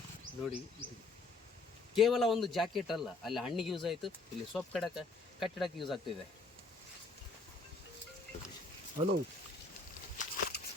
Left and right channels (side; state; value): right; quieter; 3.4 dB